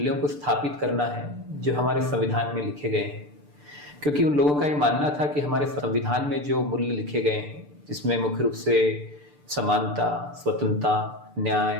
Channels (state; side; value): late; left; 6.8 ms